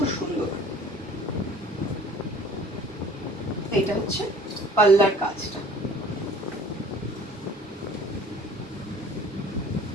সুন্দর, এটা হচ্ছে পাল্লার কাজটা।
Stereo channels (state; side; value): normal; both; correlation 0.50